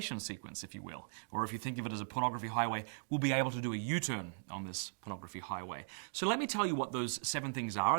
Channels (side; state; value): left; silent; digital silence